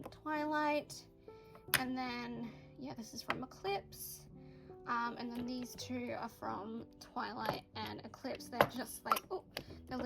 Twilight, and then yeah, this is from Eclipse. And then these 2 are from Twilight and Eclipse. They're just like, oh, they're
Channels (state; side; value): identical; both; correlation 1.00